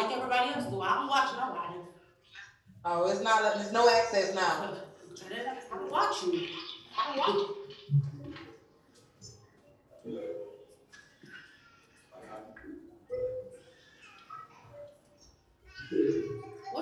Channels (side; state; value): both; identical; correlation 1.00